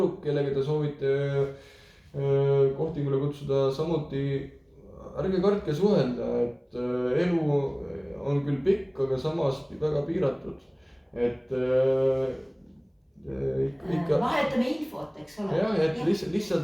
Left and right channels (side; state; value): both; identical; correlation 1.00